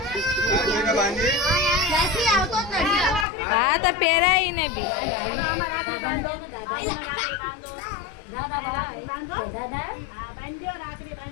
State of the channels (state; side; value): drops out; right; at 3.2 s